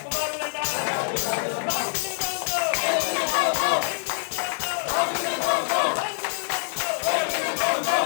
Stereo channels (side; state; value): right; silent; 62 dB below the other